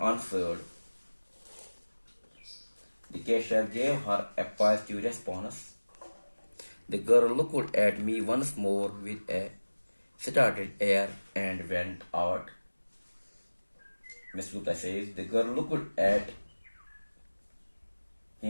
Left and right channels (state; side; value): inverted; both; correlation -1.00